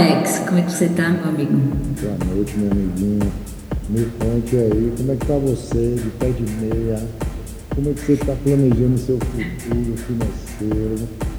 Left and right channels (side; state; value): both; identical; correlation 1.00